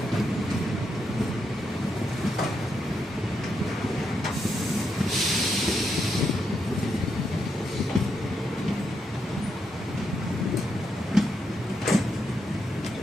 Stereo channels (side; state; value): both; normal; correlation 0.81